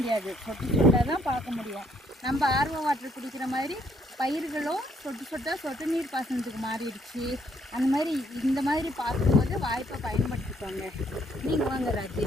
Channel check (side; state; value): both; normal; correlation 0.68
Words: சொட்டு சொட்டாக தான் பார்க்க முடியும். நம்ம ஆர்வ வாட்டர் குடிக்கிற மாதிரி பயிர்களும் சொட்டு சொட்டாக சொட்டு நீர் பாசனத்துக்கு மாறிடுச்சு. அந்த மாதிரி இந்த மாதிரி பார்க்கும்போது வாய்ப்பை பயன்படுத்திக்கோங்க. நீங்கள் வாங்க ராஜி.